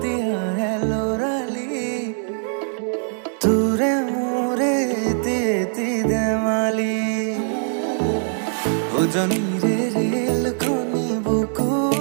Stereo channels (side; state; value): left; silent; 60 dB below the other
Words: আহে লৰালি, তোৰে মোৰে এতি ধেমালি। উজনিৰে ৰেলখনি